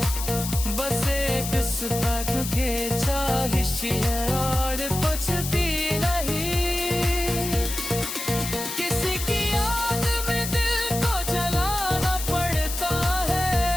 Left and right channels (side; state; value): left; noise; hiss, 6 dB below the sound